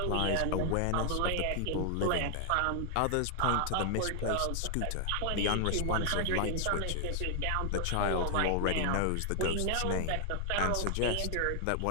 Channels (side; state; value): both; different; correlation 0.00